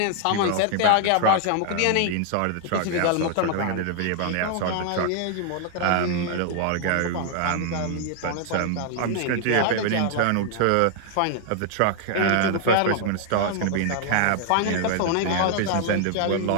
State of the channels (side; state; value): both; different; correlation 0.00